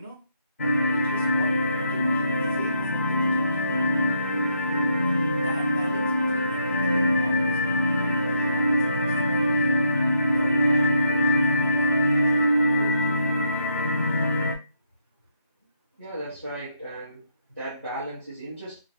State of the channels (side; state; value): both; inverted; correlation -0.74